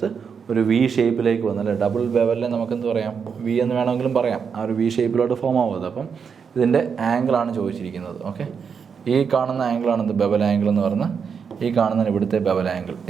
ഒരു വി ഷേപ്പിലേക്ക് വന്നല്ലേ. ഡബിൾ ബെവലിനെ നമുക്കെന്ത് പറയാം, വി എന്ന് വേണമെങ്കിലും പറയാം. ആ ഒരു വി ഷേപ്പിലോട്ട് ഫോം ആവുന്നത്. അപ്പം ഇതിൻ്റെ ആംഗിളാണ് ചോദിച്ചിരിക്കുന്നത്. ഓക്കെ, ഈ കാണുന്ന ആംഗിളാണ് ഇത് ബെവൽ ആംഗിൾ എന്ന് പറഞ്ഞാൽ, ഈ കാണുന്നതിന് ഇവിടുത്തെ ബെവൽ ആംഗിൾ.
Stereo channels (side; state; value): left; quieter; 6.4 dB